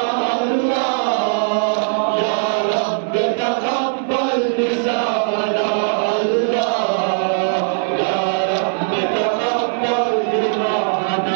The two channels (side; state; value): left; silent; digital silence